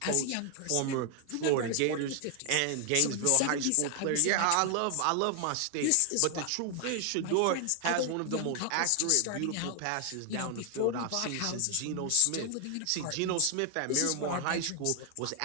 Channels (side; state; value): both; different; correlation 0.00